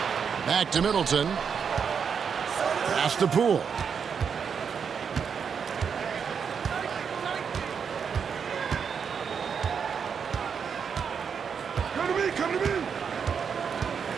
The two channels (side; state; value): left; quieter; 6.7 dB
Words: Back to Middleton. Pass to Poole.